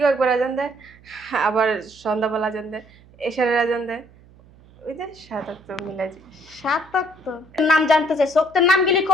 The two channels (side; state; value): right; noise; hum, 25 dB below the sound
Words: একবার আজান দেয়, আবার সন্ধ্যাবেলা আজান দেয়, এশারের আজান দেয়। ওই যে 7 ওয়াক্ত মিলাই যায়। 7 তো নাম জানতে চাই, সোক্তের নাম গেলি